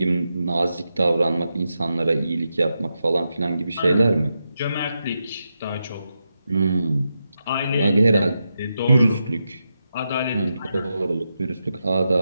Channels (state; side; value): inverted; both; correlation -0.87